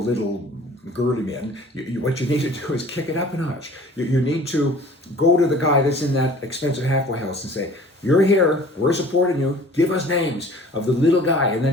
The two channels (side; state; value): both; normal; correlation 0.48